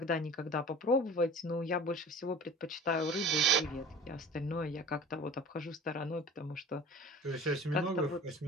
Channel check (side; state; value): both; normal; correlation 0.42